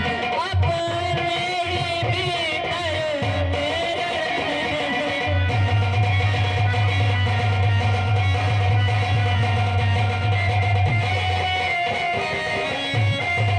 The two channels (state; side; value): identical; both; correlation 1.00